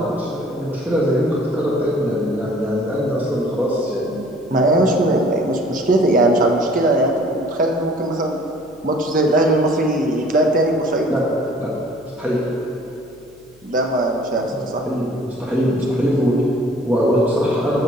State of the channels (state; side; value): noise; left; hum, 29 dB below the sound